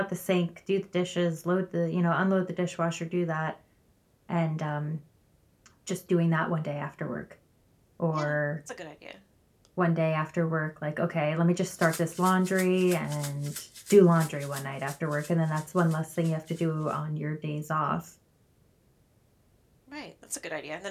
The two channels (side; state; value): both; identical; correlation 1.00